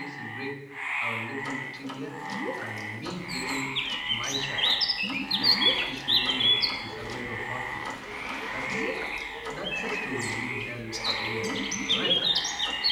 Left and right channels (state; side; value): identical; both; correlation 1.00